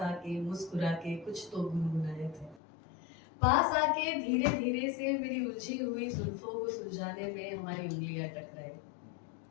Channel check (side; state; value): right; drops out; at 2.6 s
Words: मुस्कुरा के कुछ तो गुनगुनाए थे, पास आके धीरे धीरे से मेरी उलझी हुई जुल्फों को सुलझाने में हमारी उंगलियां टकराई।